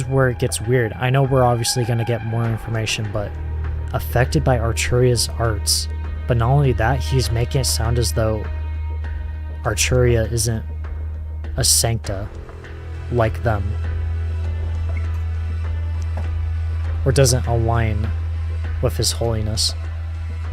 where it gets weird. I know we're obviously going to get more information, but affected by Arturia's arts. But not only that, he's making it sound as though Arturia isn't a Sancta like them. Or doesn't align with His Holiness.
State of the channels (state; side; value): identical; both; correlation 1.00